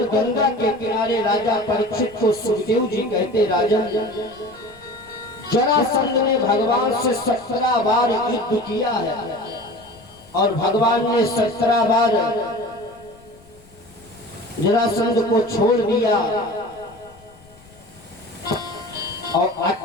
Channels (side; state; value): left; noise; rumble, 26 dB below the sound